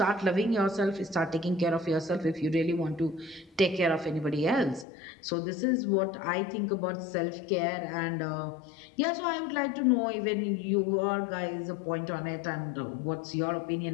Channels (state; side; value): drops out; right; at 4.9 s